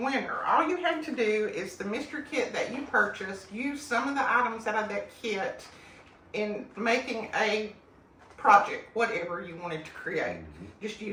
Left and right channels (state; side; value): identical; both; correlation 1.00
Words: All you have to do is the mystery kit that you purchased, use some of the items out of that kit in making a project, whatever you wanted to create. Just